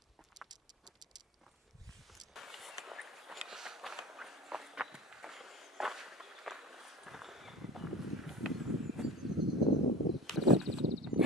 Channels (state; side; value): normal; both; correlation 0.35